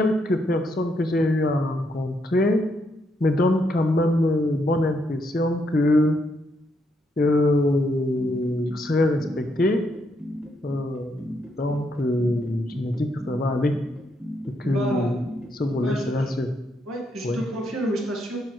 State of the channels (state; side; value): normal; both; correlation 0.77